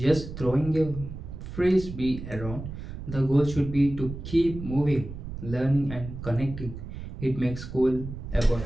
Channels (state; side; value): noise; right; rumble, 10 dB below the sound